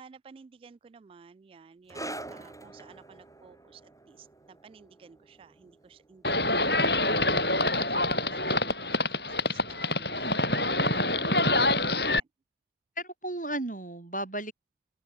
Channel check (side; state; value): both; normal; correlation -0.19